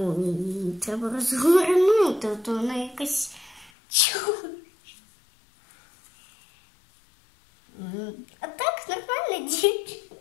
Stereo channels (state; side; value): drops out; right; at 3.7 s